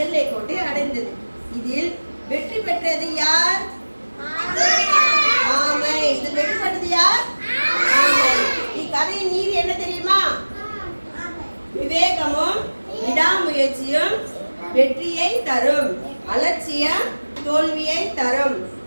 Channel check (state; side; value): inverted; both; correlation -1.00